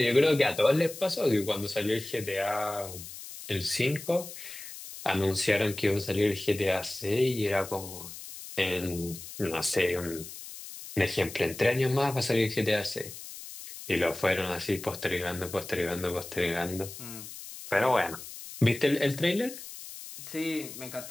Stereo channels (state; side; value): noise; left; hiss, 12 dB below the sound